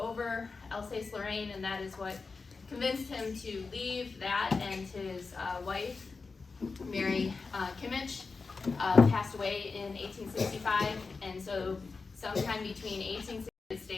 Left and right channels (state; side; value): quieter; right; 4.4 dB